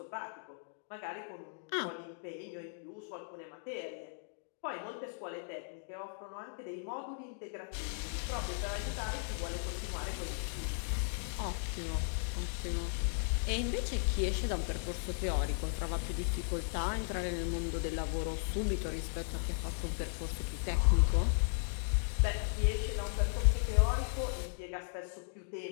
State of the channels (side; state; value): right; silent; digital silence